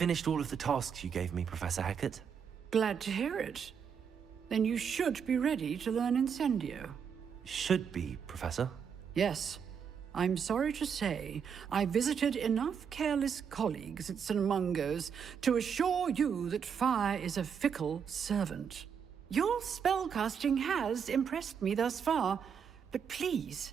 all of the tasks you gave me, Professor Hackett. Glad to hear it. Then you should be ready to learn Incendio. Should be, Professor. Yes. I'm sorry to say, I visited enough careless colleagues at St. Mungo's to assure you that fire is a fickle servant. Your spellcasting has impressed me thus far, but please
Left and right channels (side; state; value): left; quieter; 7.1 dB